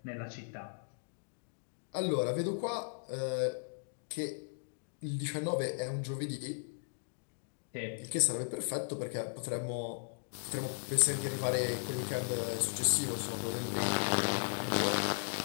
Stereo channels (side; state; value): right; silent; digital silence